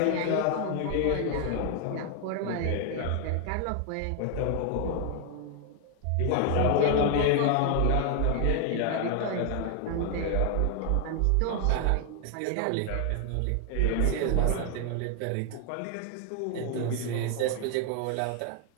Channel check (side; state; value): both; different; correlation 0.00